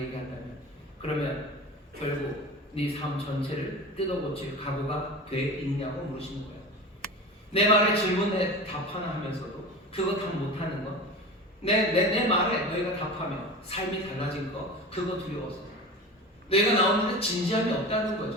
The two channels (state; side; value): normal; both; correlation 0.32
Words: 그러면 결국 네 삶 전체를 뜯어고칠 각오가 돼 있냐고 물으시는 거예요. 내 말에 질문에 답 하나 하면서도 그거 다 못하는 거, 내 말에 너희가 답하면 삶이 달라진 거, 그거 두려워서 너희가 나오는데 진지함이 없다는